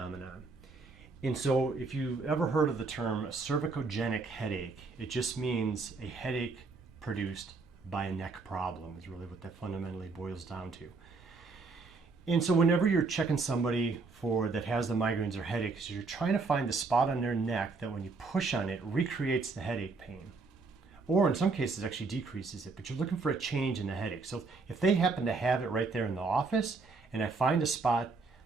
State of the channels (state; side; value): quieter; left; 4.1 dB